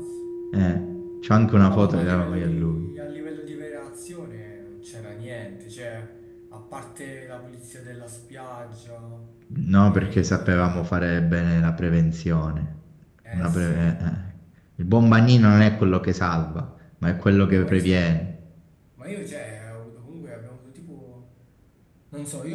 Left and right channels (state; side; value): identical; both; correlation 1.00